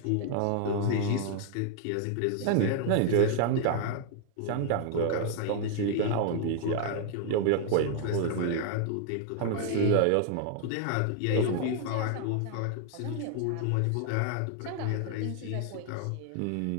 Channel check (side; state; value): both; different; correlation 0.00